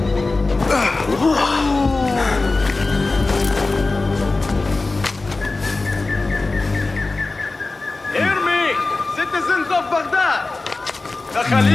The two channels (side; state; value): right; quieter; 3.5 dB